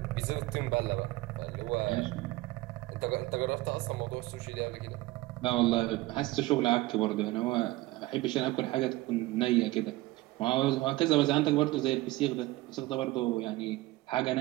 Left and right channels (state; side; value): quieter; left; 19.0 dB